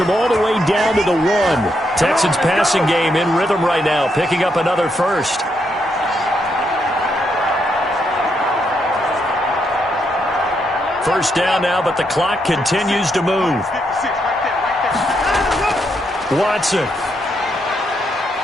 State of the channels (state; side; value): normal; both; correlation 0.78